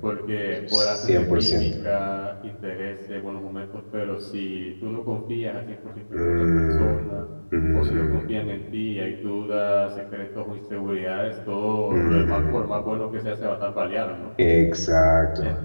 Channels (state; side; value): inverted; both; correlation -1.00